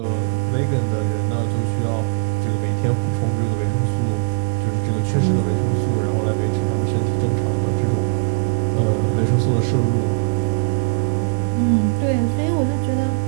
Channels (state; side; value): silent; left; 62 dB below the other